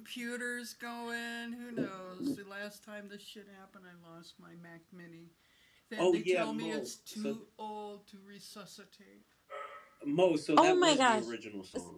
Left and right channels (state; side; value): identical; both; correlation 1.00